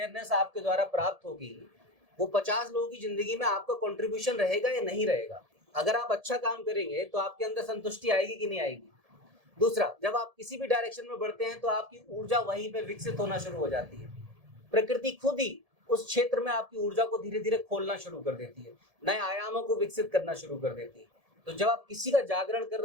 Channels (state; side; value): late; left; 1.7 ms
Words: आपके द्वारा प्राप्त होगी, वो 50 लोगों की जिंदगी में आपका कंट्रीब्यूशन रहेगा या नहीं रहेगा? अगर आप अच्छा काम करेंगे तो आपके अंदर संतुष्टि आएगी कि नहीं आएगी? दूसरा, जब आप किसी भी डायरेक्शन में बढ़ते हैं तो आपकी ऊर्जा वहीं पे विकसित होना शुरू हो जाती है। प्रकृति खुद ही उस क्षेत्र में आपकी ऊर्जा को धीरे धीरे खोलना शुरू कर देती है, नए आयामों को विकसित करना शुरू कर देती है। तो जब आप किसी का जागरण कर